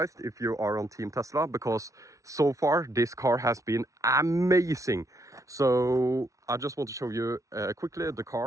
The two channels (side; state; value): left; late; 0.16 ms